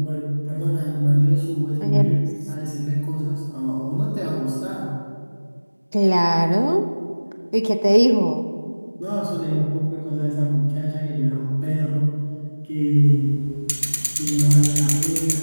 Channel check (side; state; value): both; inverted; correlation -1.00